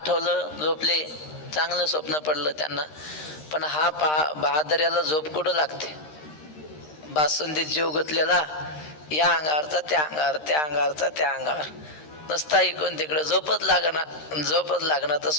झोपले, चांगलं स्वप्न पडलं त्यांना. पण हा बहादर्याला झोप कुठं लागते? बासुंदीत जीव गुंतलेला, या अंगावरचा त्या अंगावर, त्या अंगावरचा त्या अंगावर, नसता इकडून तिकडे झोपच लागणार तर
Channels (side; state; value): right; late; 13 ms